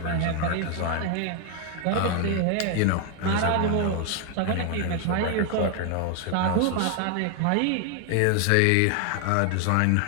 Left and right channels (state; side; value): different; both; correlation 0.00